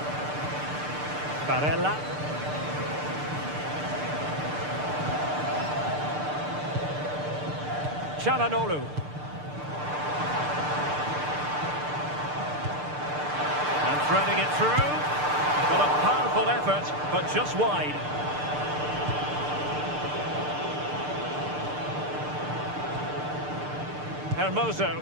Barella. Çalhanoğlu. And threading it through. Well, a powerful effort, but just wide. Hermoso.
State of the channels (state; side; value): late; left; 6.7 ms